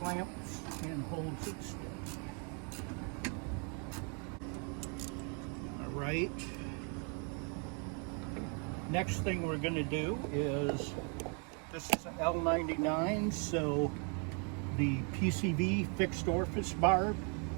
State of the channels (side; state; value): left; quieter; 38.0 dB